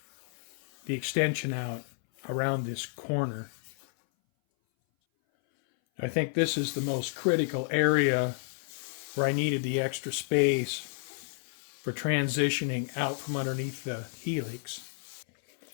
the extension out around this corner. I think this is the most critical area where I needed the extra space for transitioning out from underneath the Helix.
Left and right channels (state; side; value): silent; right; 57 dB below the other